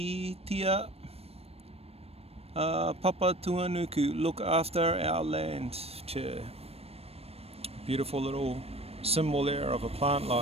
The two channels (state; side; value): late; left; 0.29 ms